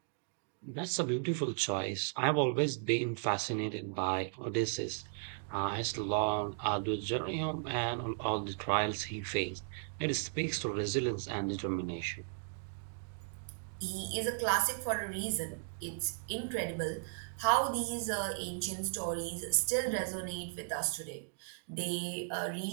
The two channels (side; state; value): left; silent; digital silence